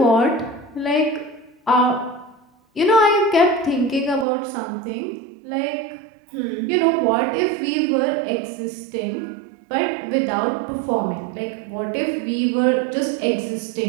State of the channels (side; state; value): left; drops out; at 4.2 s